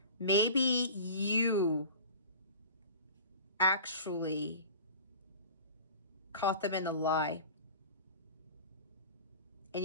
maybe you actually caught them in a lie. And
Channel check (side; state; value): both; inverted; correlation -0.38